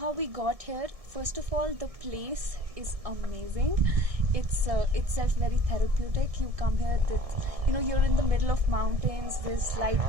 we got here. First of all, the place is amazing. It's itself very therapeutic. You come here, you're in the middle of mountains. There's light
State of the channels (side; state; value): left; late; 1.6 ms